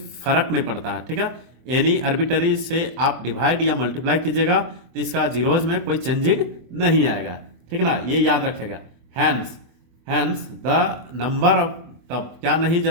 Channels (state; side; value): late; left; 24 ms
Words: फर्क नहीं पड़ता है। ठीक है, एनी आर्बिट्ररी से आप डिवाइड या मल्टीप्लाई कीजिएगा तो इसका जीरोज में कोई चेंजिंग नहीं आएगा, ठीक है ना, ये याद रखेगा। हैंस द नंबर ऑफ, तब क्या नहीं,